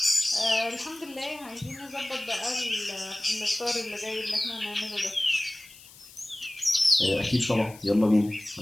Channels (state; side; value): noise; left; hiss, 21 dB below the sound